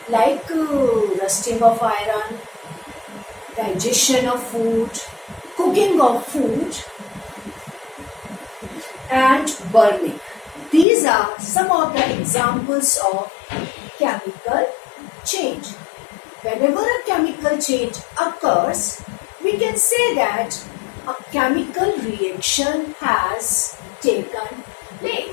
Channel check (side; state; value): right; drops out; at 10.9 s